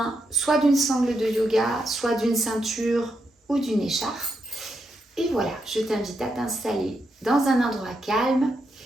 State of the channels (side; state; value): both; normal; correlation 0.82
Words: soit d'une sangle de yoga, soit d'une ceinture ou d'une écharpe. Et voilà, je t'invite à t'installer dans un endroit calme